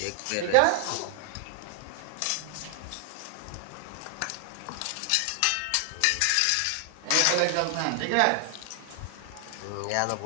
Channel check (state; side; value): different; both; correlation 0.00